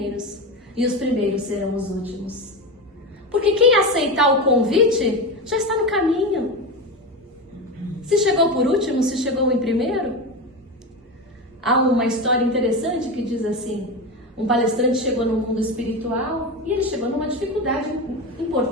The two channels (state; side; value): normal; both; correlation 0.20